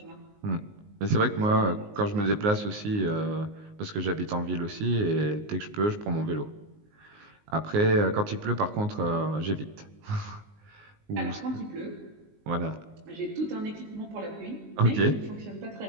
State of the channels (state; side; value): late; left; 19 ms